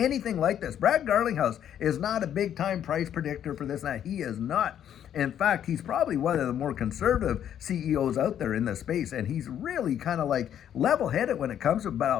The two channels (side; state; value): right; quieter; 9.9 dB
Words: like this. Brad Garlinghouse is not a big-time price predictor for this and that. He is not. In fact, he's probably one of the more conservative CEOs out there in this space, and he's really kind of like level-headed when it comes to it. But